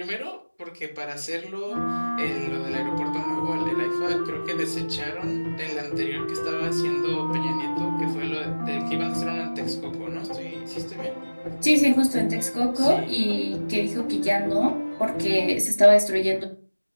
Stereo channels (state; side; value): inverted; both; correlation -1.00